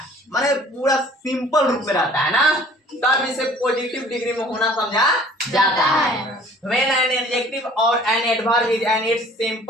माने पूरा सिंपल रूप में रहता है ना, तब इसे पॉजिटिव डिग्री में होना समझा जाता है। When an adjective or an adverb is in its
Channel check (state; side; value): normal; both; correlation 0.52